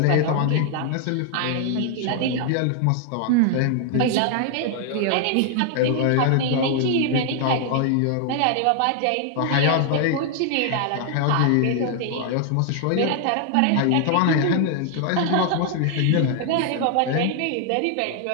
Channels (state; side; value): different; both; correlation 0.00